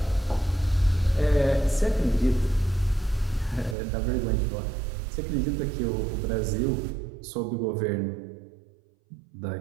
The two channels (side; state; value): left; drops out; at 3.8 s